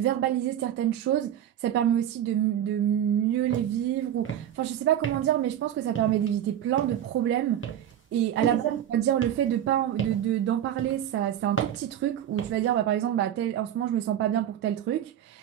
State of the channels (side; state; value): left; quieter; 10.7 dB